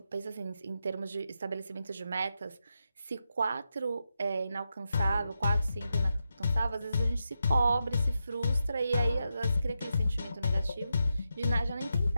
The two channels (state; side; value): inverted; both; correlation -0.87